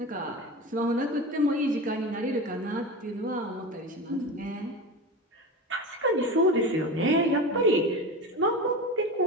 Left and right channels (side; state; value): both; normal; correlation 0.26